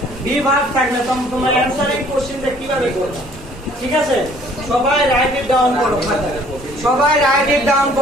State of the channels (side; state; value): both; normal; correlation 0.57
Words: বি ভার্ব থাকলে তোমরা অ্যানসারিং কোশ্চেনটা কিভাবে করবে। ঠিক আছে, সবাই রাইট ইট ডাউন করো খাতায়, সবাই রাইট ইট ডাউন